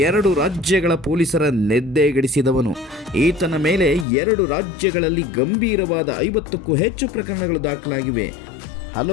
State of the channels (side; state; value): right; drops out; at 4.0 s